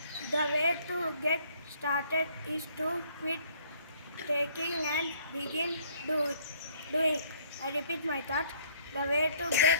The way to get started is to quit taking and begin doing. I repeat my thought. The way to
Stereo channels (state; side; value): inverted; both; correlation -0.61